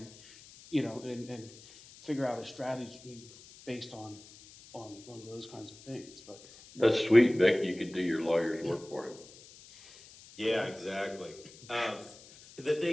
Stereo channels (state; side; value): noise; left; hiss, 21 dB below the sound